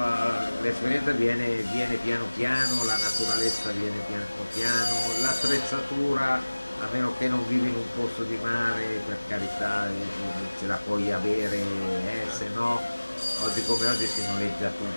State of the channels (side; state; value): both; inverted; correlation -1.00